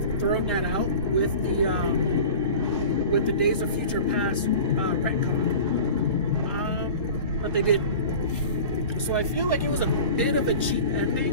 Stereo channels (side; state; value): both; inverted; correlation -0.38